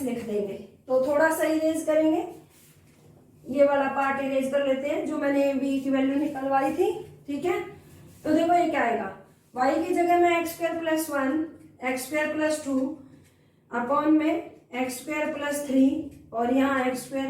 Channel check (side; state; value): both; identical; correlation 1.00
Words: लिख देंगे। तो थोड़ा सा इरेज करेंगे, ये वाला पार्ट इरेज कर लेते हैं जो मैंने v की वैल्यू निकलवाई थी, ठीक है। तो देखो ये क्या आएगा, y की जगह में x² + 1, x² + 2 अपॉन में x² + 3 और यहाँ